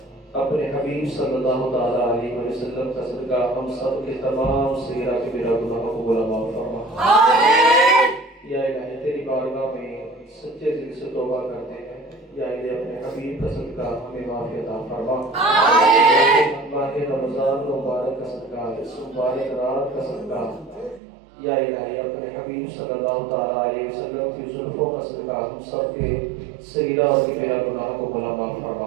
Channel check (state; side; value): drops out; left; at 21.0 s